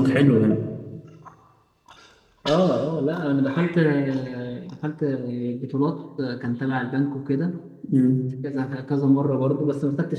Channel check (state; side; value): identical; both; correlation 1.00